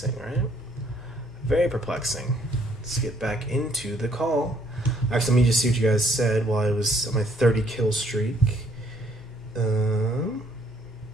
right? Very perplexing. Let's get back into the call. Actually, let me just see what you guys said while I was on my 30 kill streak.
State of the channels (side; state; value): both; normal; correlation 0.66